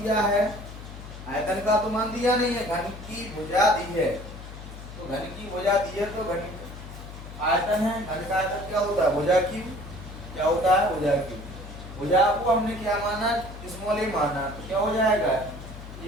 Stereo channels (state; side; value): noise; left; hum, 13 dB below the sound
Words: है, आयतन का तो मान दिया नहीं है, घन की भुजा दी है। तो घन की भुजा दी है तो घन आयतन है। घन का आयतन क्या होता है? भुजा क्यूब। क्या होता है? भुजा क्यूब। भुजा को हमने क्या माना? स्मॉल a माना। तो क्या हो जाएगा? ये